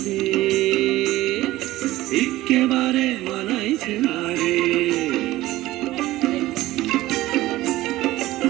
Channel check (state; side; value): quieter; left; 16.8 dB